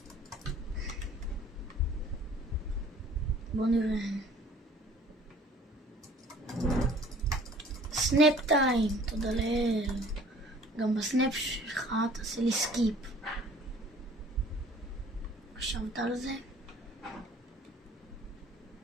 בואו נראה. סנאפ טיים, תודה לאל. גם בסנאפ שלך תעשה לי סקיפ. חשבת על זה?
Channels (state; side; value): normal; both; correlation 0.51